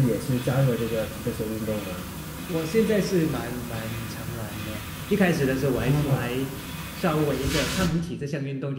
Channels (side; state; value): both; identical; correlation 1.00